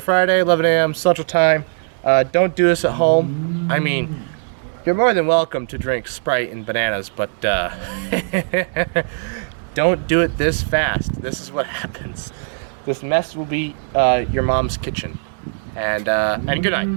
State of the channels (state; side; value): silent; left; digital silence